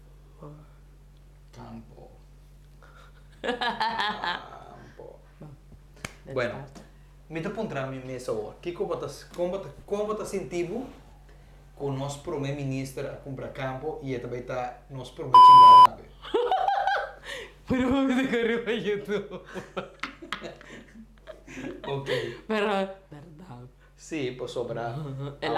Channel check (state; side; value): identical; both; correlation 1.00